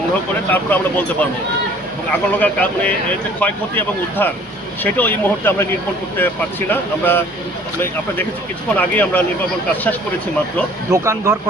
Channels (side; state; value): both; normal; correlation 0.53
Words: করে তারপর আমরা বলতে পারবো। এবং আগুন লাগার কারণে এর যে ক্ষয়ক্ষতি এবং উদ্ধার সেটাও এই মুহূর্তে আমরা নির্ভর করতে পারছি না। আপনারা দেখেছি কিছুক্ষণ আগেই আমরা নির্বাপন কাজ শেষ করেছি মাত্র। দোকান ঘর